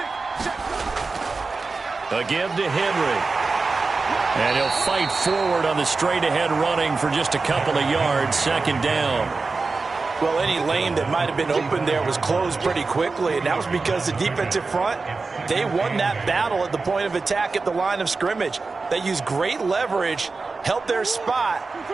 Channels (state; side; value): quieter; left; 4.1 dB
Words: Again to Henry. And he'll fight forward on the straight-ahead running for just a couple of yards, 2nd down. Well, any lane that might have been open there was closed pretty quickly, and that was because the defensive front, they won that battle at the point of attack at the line of scrimmage. They used great leverage, held their spot,